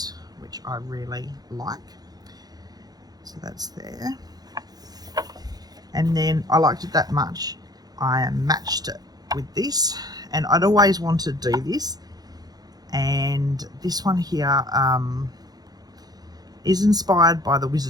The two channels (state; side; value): late; left; 0.19 ms